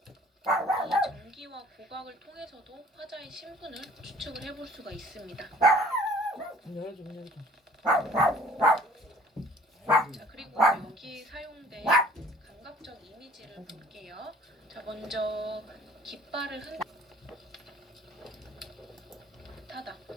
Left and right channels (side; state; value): both; normal; correlation 0.53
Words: 이 전기와 고각을 통해서도 화자의 신분을 추측을 해볼 수가 있습니다. 좀 열어줘, 문 열어줘. 자, 그리고 여기 사용된 감각적 이미지를 볼게요. 자, 먼저 깃발을 타다.